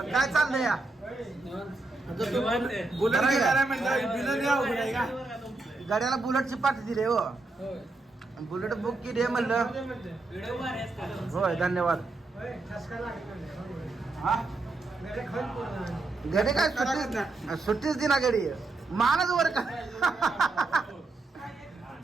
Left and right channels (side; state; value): left; quieter; 3.3 dB